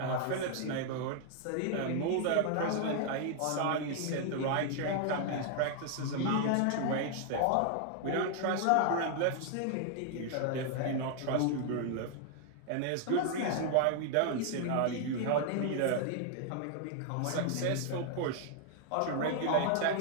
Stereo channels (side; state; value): both; different; correlation 0.00